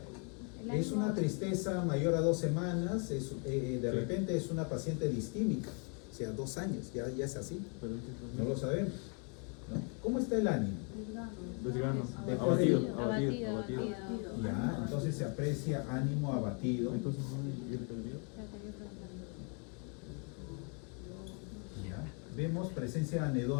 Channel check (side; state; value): right; quieter; 38.0 dB